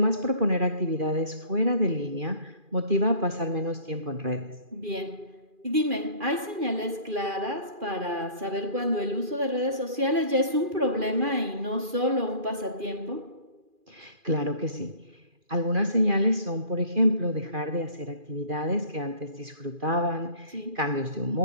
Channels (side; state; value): left; late; 2.4 ms